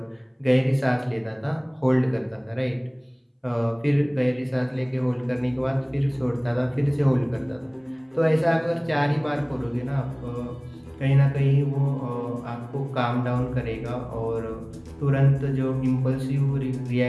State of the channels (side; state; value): both; identical; correlation 1.00